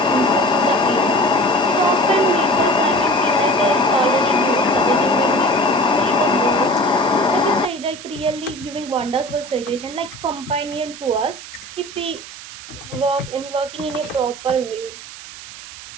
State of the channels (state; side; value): noise; right; hiss, 14 dB below the sound